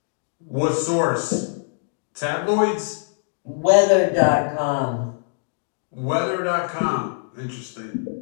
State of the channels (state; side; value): silent; right; digital silence